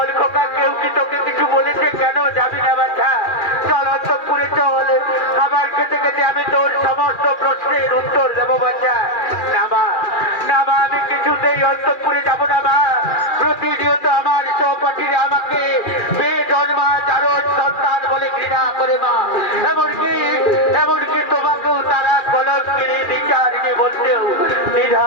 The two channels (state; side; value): late; right; 2.4 ms